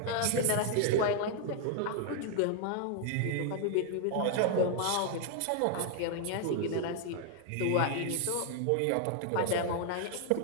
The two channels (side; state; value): both; different; correlation 0.00